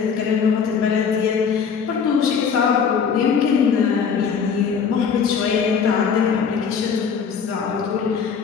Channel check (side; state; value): right; quieter; 6.5 dB